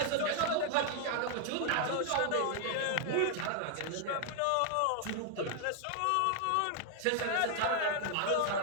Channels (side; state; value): both; different; correlation 0.00